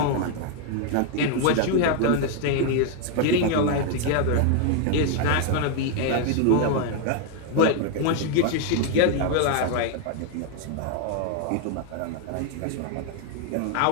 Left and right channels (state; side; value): different; both; correlation 0.01